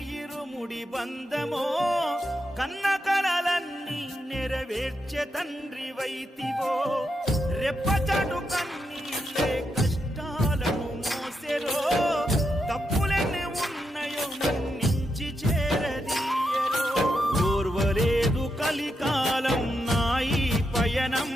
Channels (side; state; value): both; normal; correlation 0.84